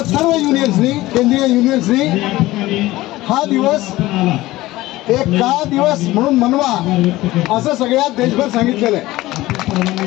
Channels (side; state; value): right; quieter; 17.7 dB